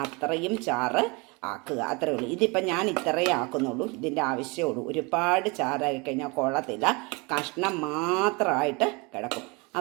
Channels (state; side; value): quieter; left; 28.2 dB